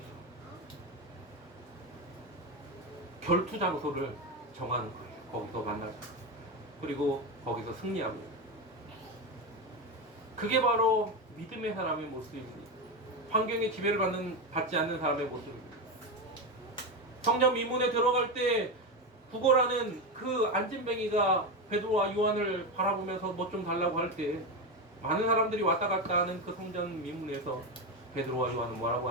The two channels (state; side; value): normal; both; correlation 0.14